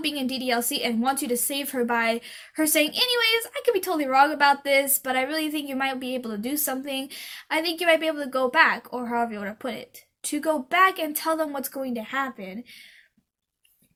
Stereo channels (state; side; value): identical; both; correlation 1.00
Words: being in DDLC and wants you to save her by her saying, anyways, I could be totally wrong about this, but I really think you might be able to do something. I think you might be able to go back, or however you want to put it. To go back and tell them what's going to happen.